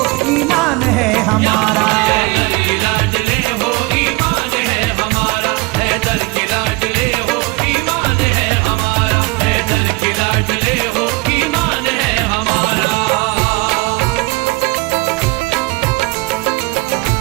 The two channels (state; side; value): quieter; left; 24.1 dB